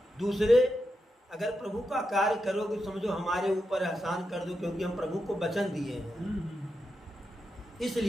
दूसरे अगर प्रभु का कार्य करोगे समझो हमारे ऊपर एहसान कर दो, क्योंकि हम प्रभु को वचन दिए हैं।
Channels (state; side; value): normal; both; correlation 0.87